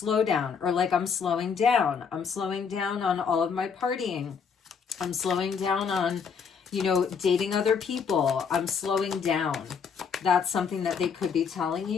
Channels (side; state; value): right; quieter; 6.3 dB